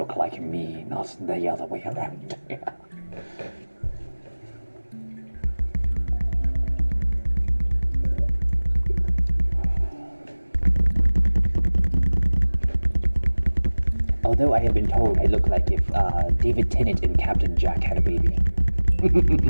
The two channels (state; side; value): inverted; both; correlation -1.00